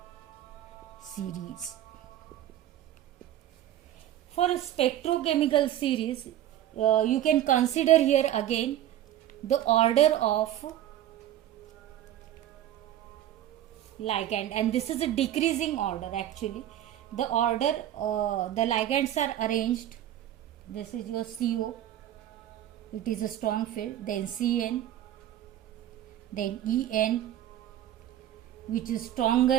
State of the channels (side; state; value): left; quieter; 12.2 dB